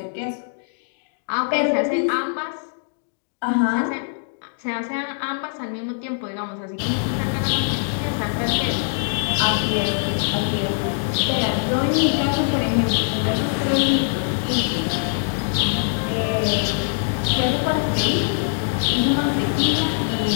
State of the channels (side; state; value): right; silent; digital silence